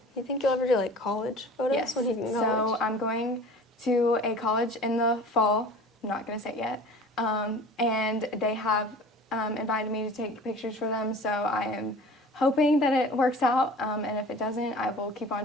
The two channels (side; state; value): both; normal; correlation 0.42